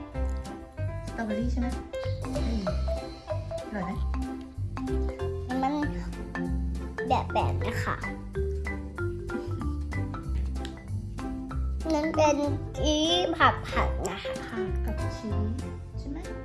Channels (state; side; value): identical; both; correlation 1.00